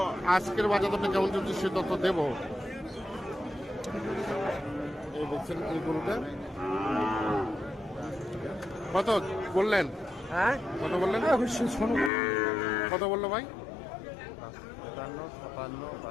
আজকের বাজার দরটা কেমন চলছে সে তথ্য দেবো। এই দেখছেন এই গরুটা কত বললেন? হ্যাঁ কত বললেন? কত বললো ভাই?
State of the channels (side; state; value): right; drops out; at 12.1 s